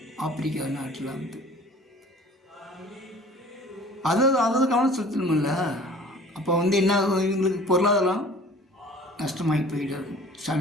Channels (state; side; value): normal; both; correlation 0.47